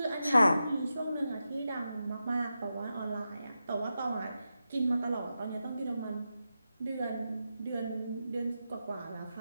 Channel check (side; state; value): both; inverted; correlation -0.90